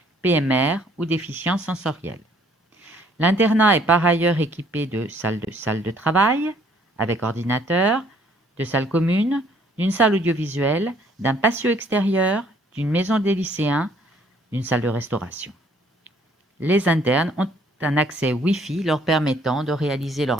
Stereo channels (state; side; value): normal; both; correlation 0.62